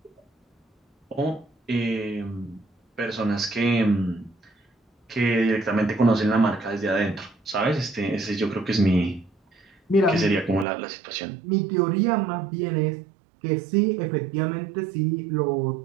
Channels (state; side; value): drops out; left; at 10.7 s